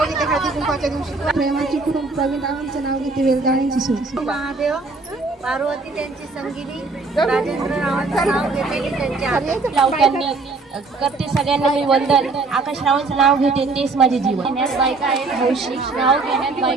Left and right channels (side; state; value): left; quieter; 3.8 dB